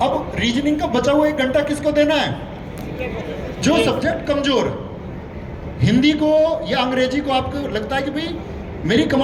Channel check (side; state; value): both; identical; correlation 1.00